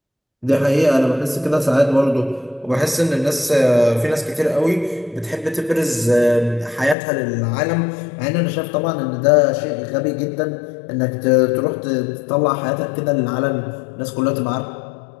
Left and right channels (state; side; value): drops out; right; at 7.0 s